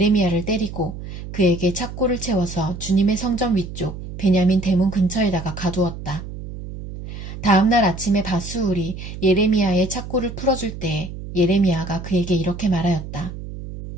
때리고 그에게 착고를 채워서 주님의 성전 위쪽 베냐민 대문 근처에다가 가두었다. 다음날 아침에 바스울이 예레미야의 착고를 풀어줄 때에 예레미야가 그에게 이렇게 말하였다.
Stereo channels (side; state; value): right; noise; hum, 10 dB below the sound